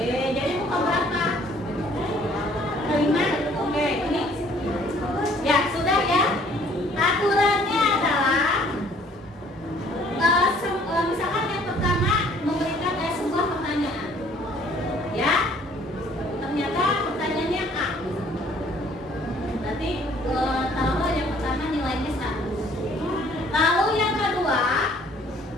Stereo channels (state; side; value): normal; both; correlation 0.59